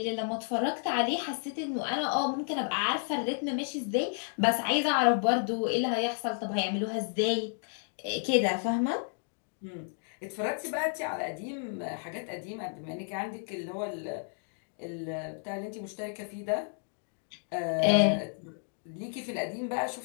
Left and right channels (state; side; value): silent; right; 57 dB below the other